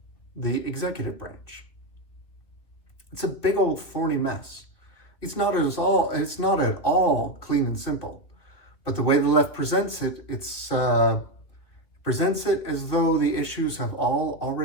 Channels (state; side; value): late; right; 2.8 ms